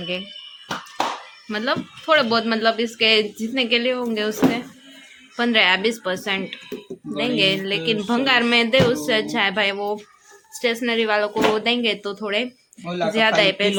मतलब थोड़े बहुत, मतलब इसके जितने के लिए होंगे उसके 15 या 20% देंगे। लेकिन भंगार में दे उससे अच्छा है भाई, वो स्टेशनरी वालों को वो देंगे तो थोड़े ज्यादा ही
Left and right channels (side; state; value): both; identical; correlation 1.00